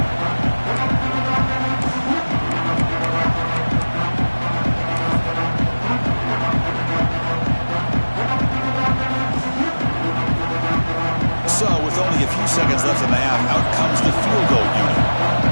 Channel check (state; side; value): inverted; both; correlation -1.00